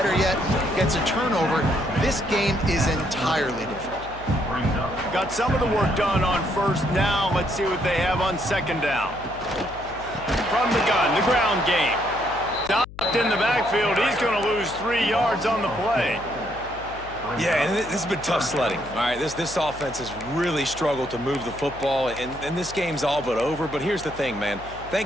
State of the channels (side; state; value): left; noise; hum, 16 dB below the sound